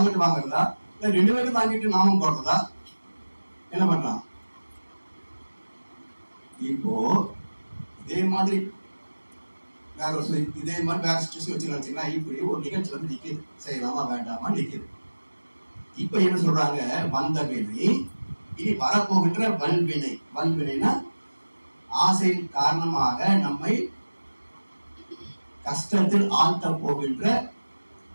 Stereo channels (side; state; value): both; inverted; correlation -1.00